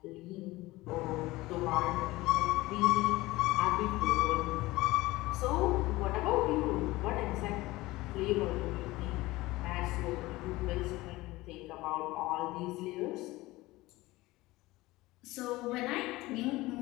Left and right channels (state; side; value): quieter; right; 19.4 dB